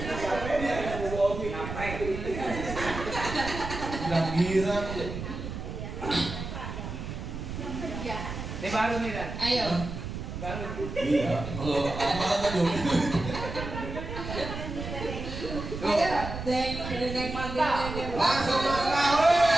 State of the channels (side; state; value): right; noise; rumble, 7 dB below the sound